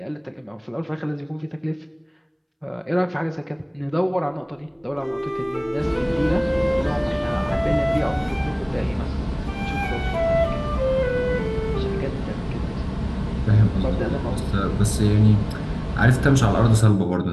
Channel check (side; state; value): both; identical; correlation 1.00